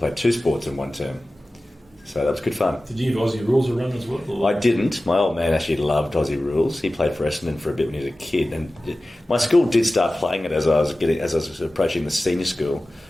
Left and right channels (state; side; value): normal; both; correlation 0.96